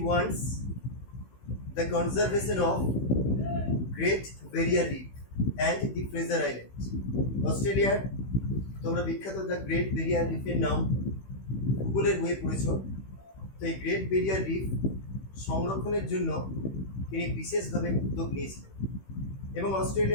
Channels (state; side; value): late; right; 16 ms